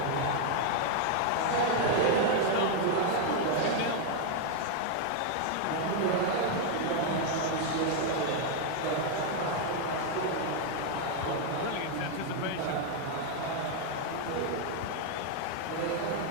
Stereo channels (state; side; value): different; both; correlation 0.00